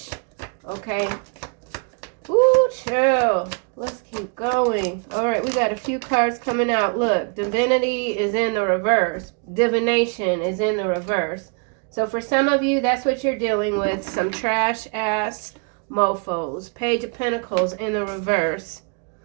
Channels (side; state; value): left; quieter; 36.1 dB